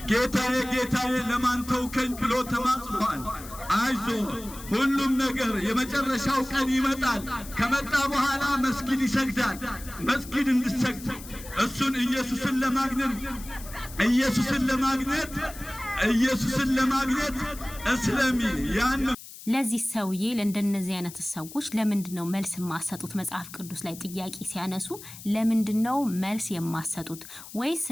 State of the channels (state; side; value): noise; left; hiss, 15 dB below the sound